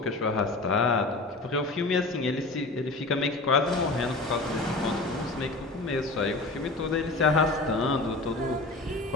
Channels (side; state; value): right; quieter; 3.1 dB